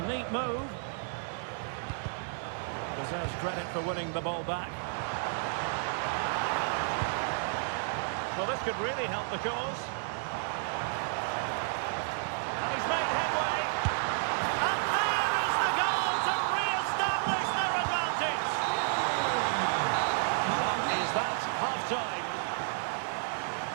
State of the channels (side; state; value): left; silent; 57 dB below the other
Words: neat move. Deserves credit for winning the ball back. Well, this could really help the cause. And he's made headway. And there is the goal to re-establish their advantage. That is that, half-time.